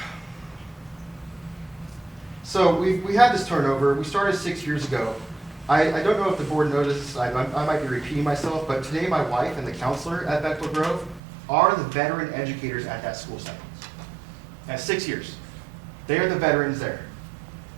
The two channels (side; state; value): left; drops out; at 11.2 s